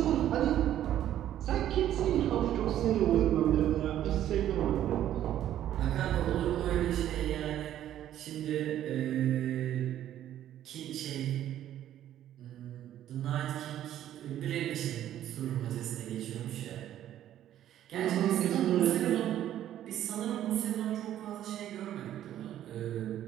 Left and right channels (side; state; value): left; quieter; 11.8 dB